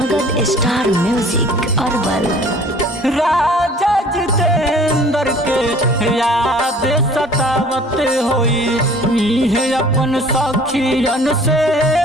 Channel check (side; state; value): both; normal; correlation 0.50